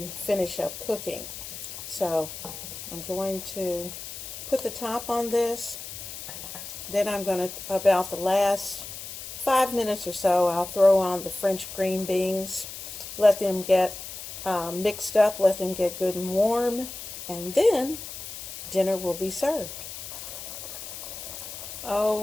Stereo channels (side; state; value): left; noise; hiss, 10 dB below the sound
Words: finish up cooking. So I'm going to put the top on this, then I'm going to, about the last 5 minutes or so, I'll throw on the French green beans, let them get mixed up, let them get good and warm, and then dinner will be served.